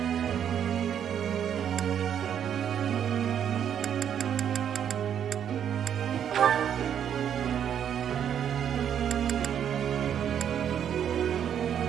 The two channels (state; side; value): quieter; left; 9.0 dB